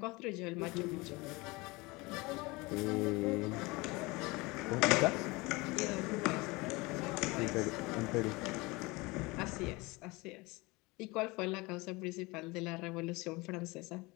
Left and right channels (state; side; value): quieter; right; 24.0 dB